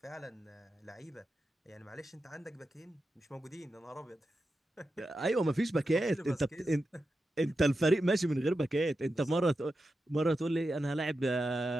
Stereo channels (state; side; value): normal; both; correlation 0.90